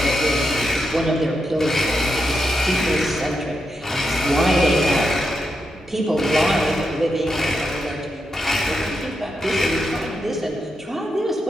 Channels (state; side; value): normal; both; correlation 0.85